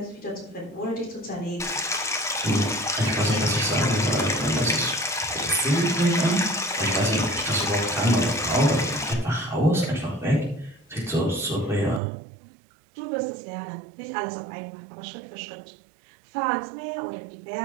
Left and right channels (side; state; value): left; drops out; at 12.0 s